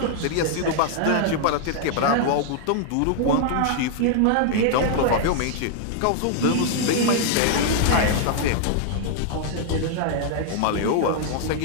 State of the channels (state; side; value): different; both; correlation 0.00